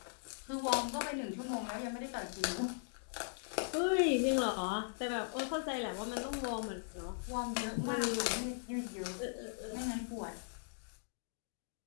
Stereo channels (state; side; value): silent; right; digital silence